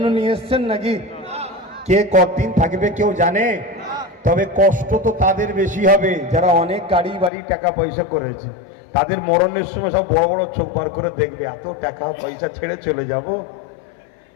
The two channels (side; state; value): right; drops out; at 7.3 s